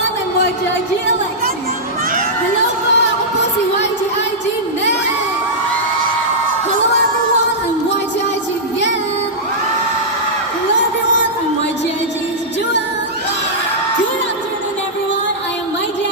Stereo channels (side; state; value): both; normal; correlation -0.10